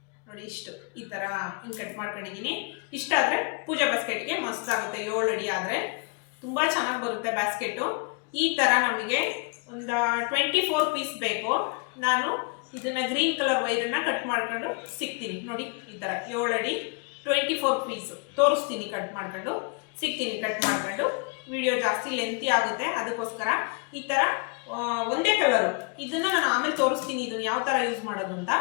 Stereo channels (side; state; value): right; quieter; 33.4 dB